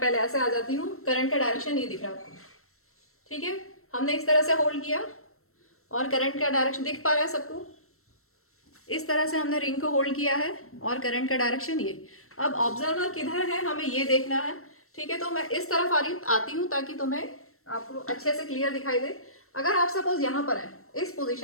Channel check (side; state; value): right; late; 0.63 ms